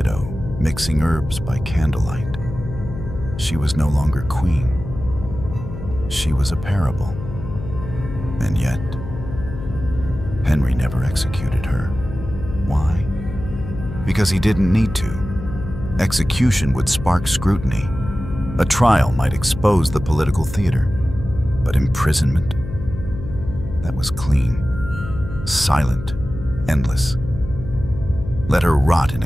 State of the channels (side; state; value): left; noise; hum, 10 dB below the sound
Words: mixing herbs by candlelight. She was no longer queen. She was a parable. And yet, Henry never executed her. Why? Because he didn't need to. Execution would spark scrutiny. A trial might expose the political theater. But imprisonment? That was clean, silent, endless. Let her rot in